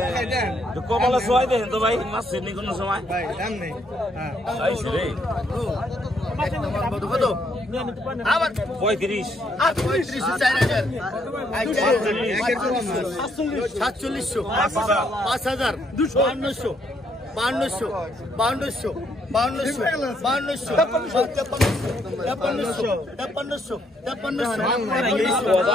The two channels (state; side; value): normal; both; correlation 0.72